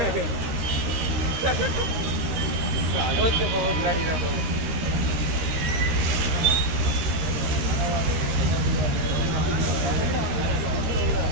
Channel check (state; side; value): late; left; 13 ms